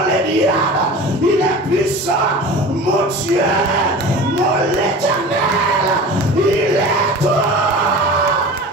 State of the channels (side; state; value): both; normal; correlation 0.36